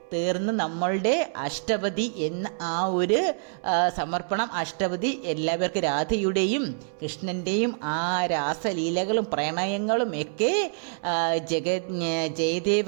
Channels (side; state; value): left; silent; digital silence